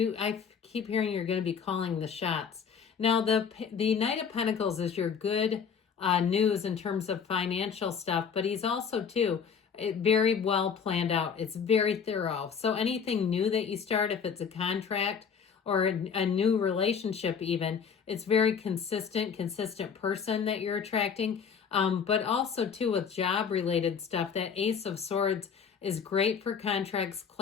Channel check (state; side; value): quieter; right; 6.7 dB